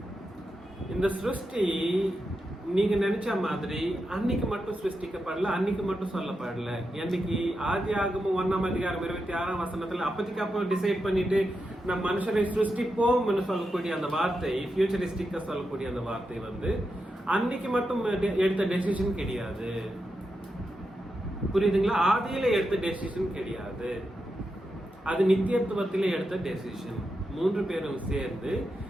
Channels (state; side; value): normal; both; correlation 0.87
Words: இந்த சிருஷ்டி நீங்க நினைச்ச மாதிரி அன்னைக்கு மட்டும் சிருஷ்டிக்கப்படல, அன்னைக்கு மட்டும் சொல்லப்படல. என்னைக்கு ஆதி ஆகமும் 1ஆம் அதிகாரம் 26ஆம் வசனத்துல அப்பத்திக்கு அப்போ டிசைட் பண்ணிட்டு நம்ம மனுஷரை சிருஷ்டிப்போம்னு சொல்லக்கூடிய அந்த வார்த்தை, ஃபியூச்சரிஸ்டிக்கா சொல்லக்கூடிய அந்த வார்த்தை வந்து அன்னைக்கு மட்டும் எடுத்த டெசிஷன் கிடையாது. புரியுதுங்களா? ஆதியில எடுத்த டெசிஷன் கிடையாது. அது நித்தியத்துவத்திலே எடுத்த டெசிஷன். 3 பேரும் சேர்ந்து